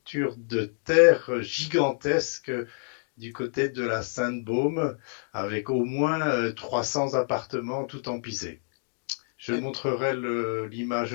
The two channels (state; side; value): silent; right; 60 dB below the other